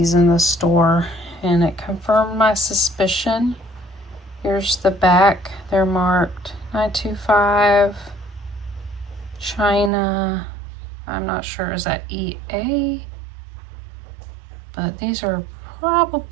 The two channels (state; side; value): drops out; left; at 9.9 s